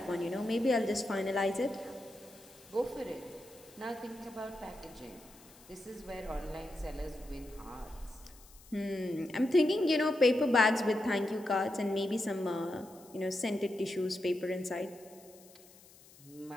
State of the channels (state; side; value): noise; left; hiss, 23 dB below the sound